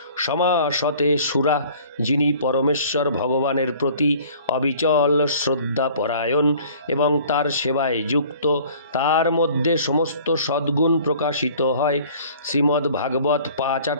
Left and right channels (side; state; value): both; inverted; correlation -0.51